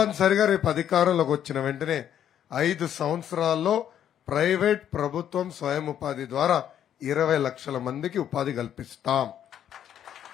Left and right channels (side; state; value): right; quieter; 10.0 dB